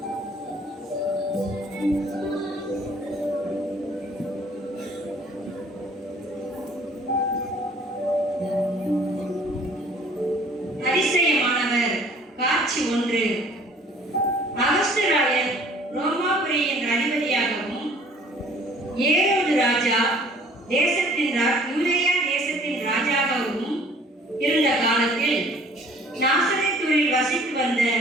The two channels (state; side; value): normal; both; correlation 0.54